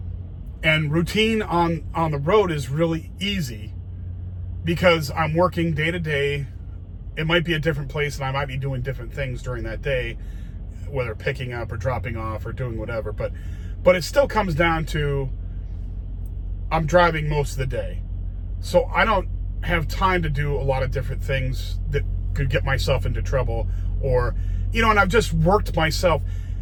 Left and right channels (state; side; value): identical; both; correlation 1.00